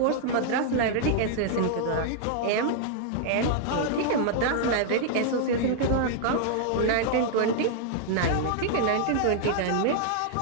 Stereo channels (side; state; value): both; different; correlation -0.01